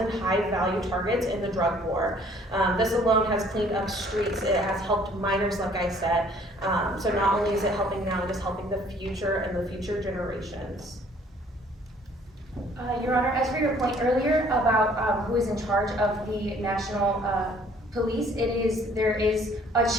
high-value targets in the drug war. This alone has cleaned up streets. It has helped minors, like I said. So not only is it helping now, it is helping the future and the future generations. Your Honor, as for your point earlier about who is in charge of the national police, there is a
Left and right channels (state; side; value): normal; both; correlation 0.58